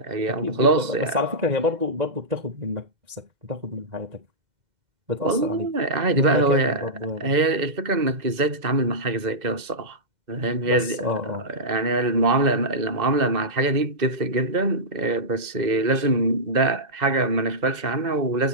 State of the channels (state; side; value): late; left; 2.0 ms